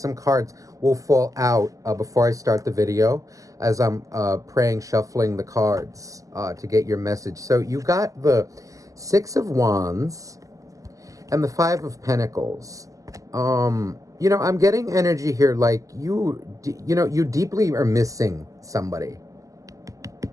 cards will fall out before I start the video as I'm praying, shuffling the cards to get your message. So you got the Six of Wands and the Five of Pentacles. You know, I'm getting energy here like you deeply are missing somebody.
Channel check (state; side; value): late; left; 0.16 ms